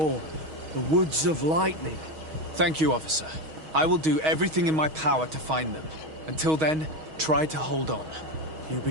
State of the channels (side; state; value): left; late; 6.3 ms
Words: the Woods of Lightning. Thank you, officer. I will do everything in my power to find them. Until then, try to hold on. You